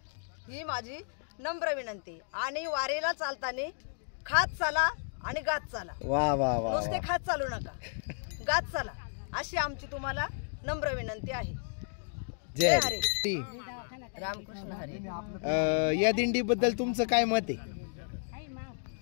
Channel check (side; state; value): right; silent; digital silence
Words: ही माझी नम्र विनंती. आणि वारीला चालताना खात चाला आणि गात चाला. वा वा वा. नुसते खात चालू नका, गात चाला अशी आमची तुम्हाला नम्र विनंती आहे. जय हरी. रामकृष्ण हरी. या दिंडीबद्दल तुमचं काय मत आहे?